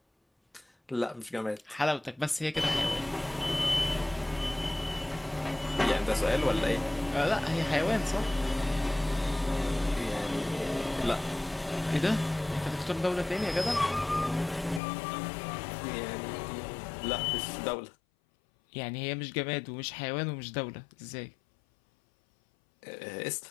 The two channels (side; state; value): right; drops out; at 14.8 s